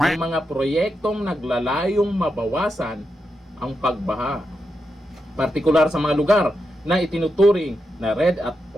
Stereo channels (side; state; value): both; normal; correlation 0.86